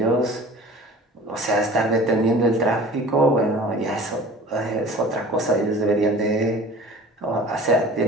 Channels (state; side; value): normal; both; correlation 0.43